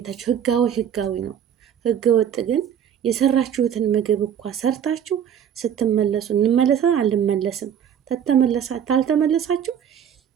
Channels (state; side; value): quieter; left; 9.0 dB